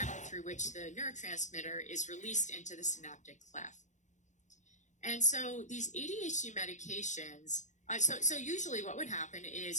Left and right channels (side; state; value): right; late; 0.35 ms